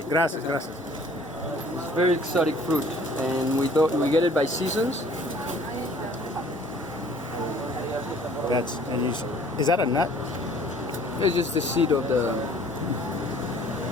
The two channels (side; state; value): both; normal; correlation 0.54